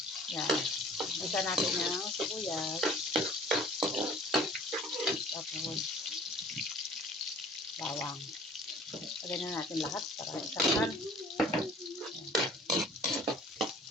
Yan. Isa natin yung sibuyas. Tapos bawang. Lagyan na natin lahat para isahan.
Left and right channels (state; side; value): normal; both; correlation 0.49